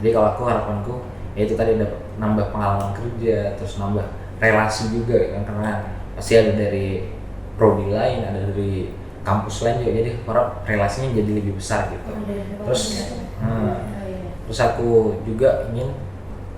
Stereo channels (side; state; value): both; identical; correlation 1.00